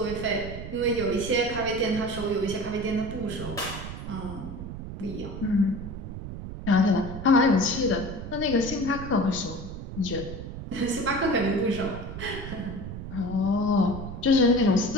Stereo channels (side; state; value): right; noise; rumble, 9 dB below the sound